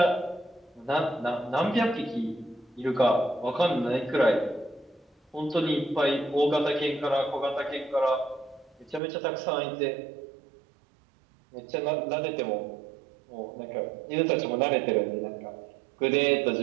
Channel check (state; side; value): drops out; left; at 9.0 s